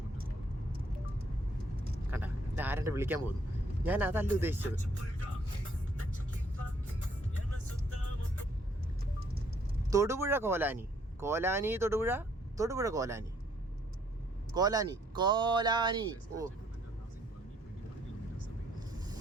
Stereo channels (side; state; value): both; normal; correlation 0.66